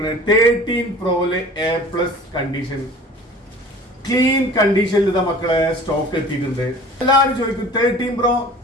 13 Proയില് A+ കണ്ടീഷൻ ക്ലീൻ കണ്ടീഷനിൽ ഇതാ മക്കളെ സ്റ്റോക്ക് എത്തിയിട്ടുണ്ട്. എല്ലാവരും ചോദിക്കും 13 Pro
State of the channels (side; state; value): both; normal; correlation 0.44